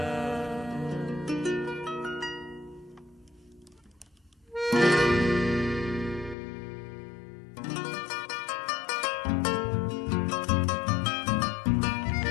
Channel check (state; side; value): drops out; right; at 6.4 s